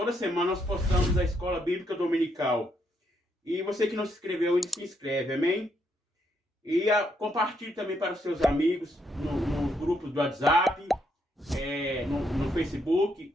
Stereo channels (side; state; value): both; normal; correlation 0.76